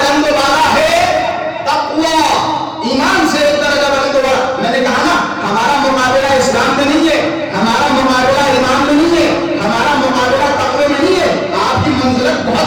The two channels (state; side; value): identical; both; correlation 1.00